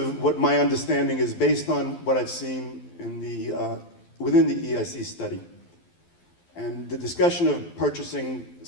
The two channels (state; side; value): late; right; 12 ms